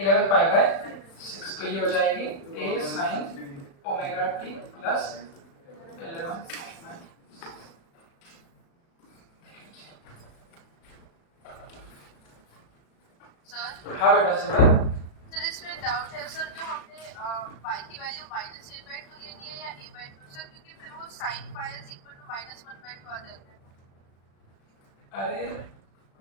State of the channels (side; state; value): right; late; 35 ms